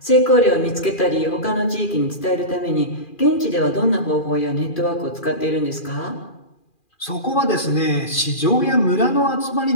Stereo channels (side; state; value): right; late; 2.4 ms